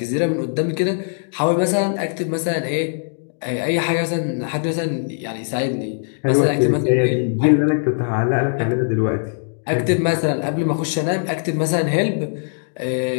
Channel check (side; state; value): right; silent; digital silence